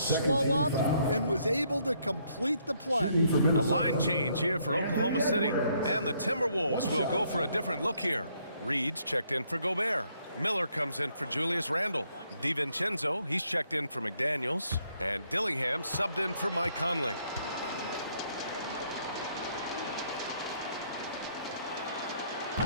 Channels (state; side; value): inverted; both; correlation -0.70